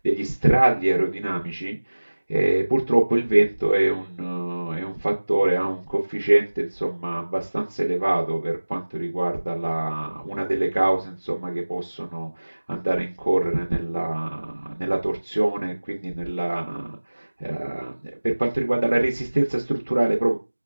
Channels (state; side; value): inverted; both; correlation -1.00